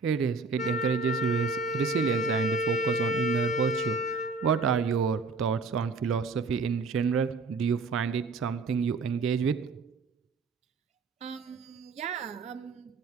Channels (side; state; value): left; quieter; 4.1 dB